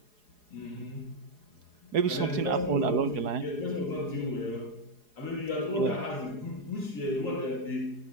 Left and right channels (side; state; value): left; late; 4.8 ms